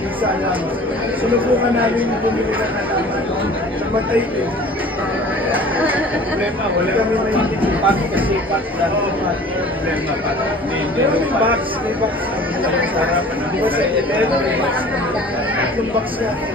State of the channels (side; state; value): both; normal; correlation 0.46